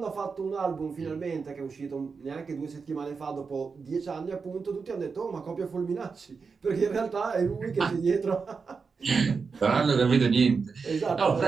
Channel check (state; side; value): quieter; left; 5.1 dB